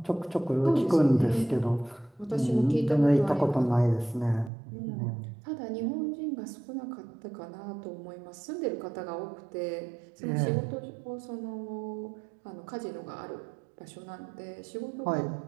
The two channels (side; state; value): left; drops out; at 4.5 s